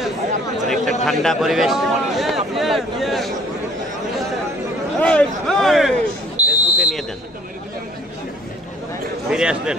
অনেকটা ঠান্ডা পরিবেশ। ফেসবুকে নিয়ে দেন, ফিরে আসবেন।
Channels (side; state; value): both; normal; correlation 0.55